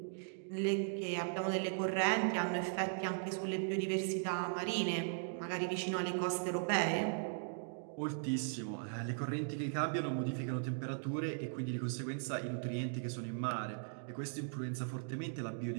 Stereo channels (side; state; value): left; silent; digital silence